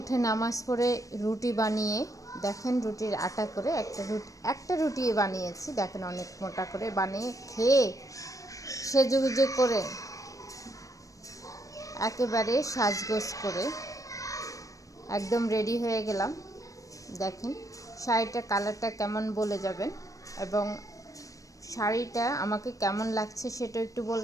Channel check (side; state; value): right; late; 0.16 ms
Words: নামাজ পড়ে রুটি বানিয়ে, দেখেন রুটির আটা করে একটা রুটি বানিয়েছি, দেখেন অনেক মোটা করে বানিয়ে খেয়ে সেজেগুজে করে একেবারে সাজগোজ করে একদম রেডি হয়ে গেলাম। দেখেন শাড়িটা কালারটা কেমন বলে যাবেন, এবং শাড়িটা আমাকে কেমন লাগছে সেটা একটু